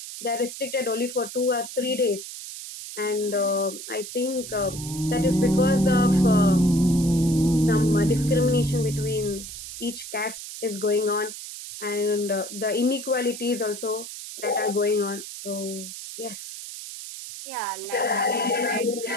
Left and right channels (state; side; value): noise; right; hiss, 10 dB below the sound